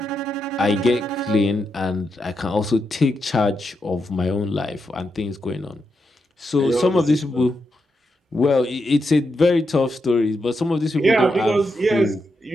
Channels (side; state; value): both; normal; correlation 0.84